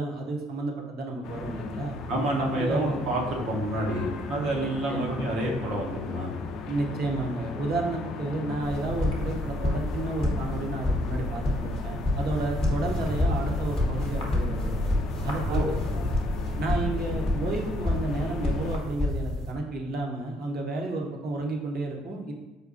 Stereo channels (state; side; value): normal; both; correlation 0.68